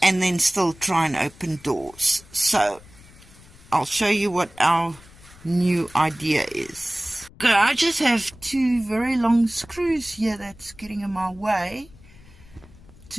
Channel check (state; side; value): noise; left; rumble, 23 dB below the sound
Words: and then still try and open doors. So I'll show you what our new idea is. Okay, I just have 2 very long screws here that's getting in my way